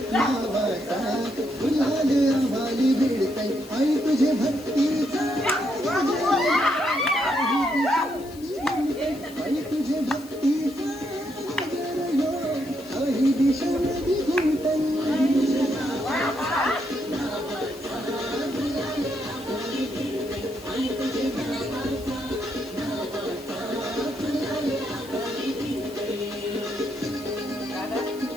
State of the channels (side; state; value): left; noise; hiss, 20 dB below the sound